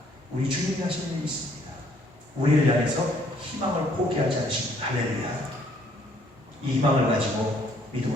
우리 주님이 하시는 일이 있습니다. 우리를 향해서 희망을 포기하지 않으십니다. 할렐루야. 이 희망을 가지고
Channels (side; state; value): both; normal; correlation 0.64